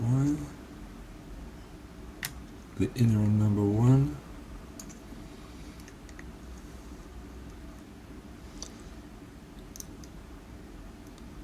The inner on number 1.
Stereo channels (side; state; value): both; identical; correlation 1.00